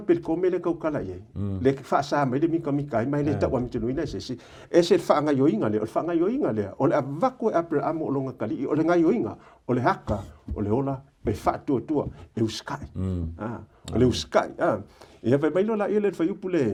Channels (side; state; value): both; identical; correlation 1.00